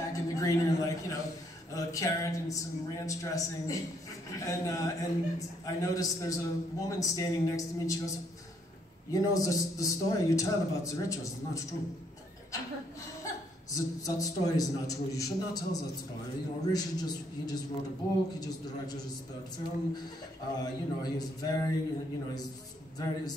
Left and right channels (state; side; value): normal; both; correlation 0.70